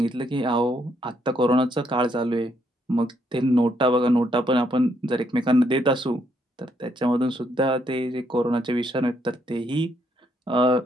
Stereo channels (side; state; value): both; normal; correlation 0.74